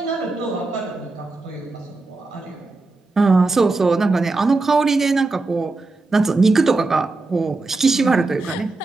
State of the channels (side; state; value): left; quieter; 3.4 dB